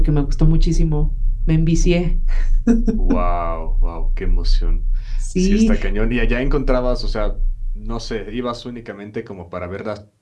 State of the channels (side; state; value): both; identical; correlation 1.00